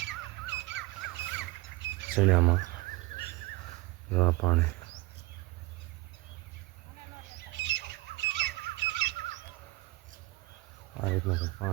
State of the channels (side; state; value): left; quieter; 21.0 dB